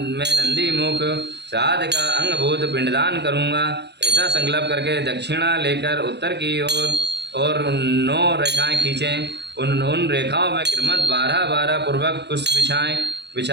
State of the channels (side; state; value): left; late; 0.50 ms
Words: नंदी मुख श्राद्ध का अंगभूत पिंडदान करूँगा। ऐसा संकल्प करके दक्षिणा लेकर उत्तर की ओर और 9 रेखाएं खींचें। उन रेखाओं में क्रमशः 12-12 पूर्वक पुष्प